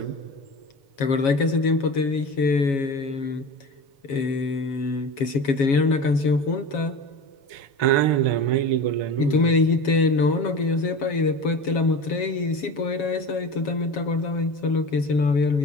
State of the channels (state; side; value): late; right; 7.3 ms